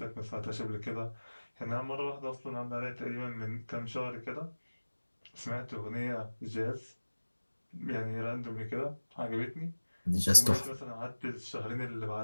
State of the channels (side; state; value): both; inverted; correlation -1.00